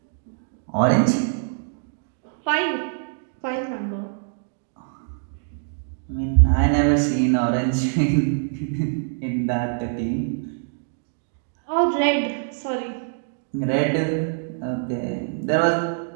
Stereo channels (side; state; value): left; silent; digital silence